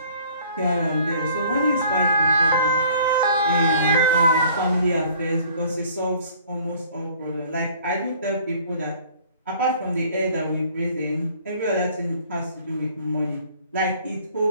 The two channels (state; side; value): inverted; both; correlation -0.54